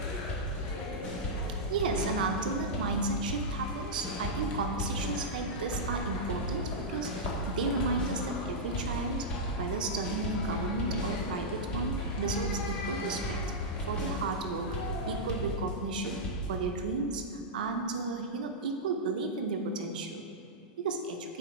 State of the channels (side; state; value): both; normal; correlation -0.10